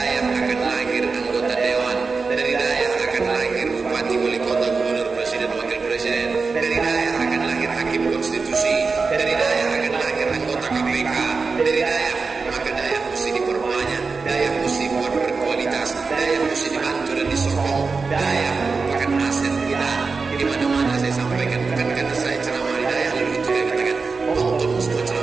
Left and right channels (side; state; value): left; quieter; 4.5 dB